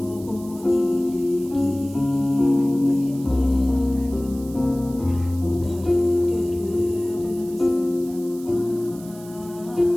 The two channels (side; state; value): right; noise; hiss, 21 dB below the sound